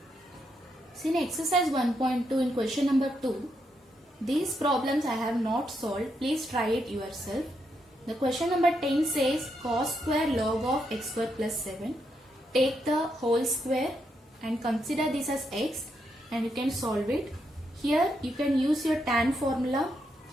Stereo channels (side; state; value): both; normal; correlation 0.80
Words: See, in exercise 1.2 in question number 2, these problems I have not solved. Please try it yourself. The question number 10 says cos square log of x square plus 7. Take the whole square and consider this as x, and you can solve it. Here you can use your tan formula,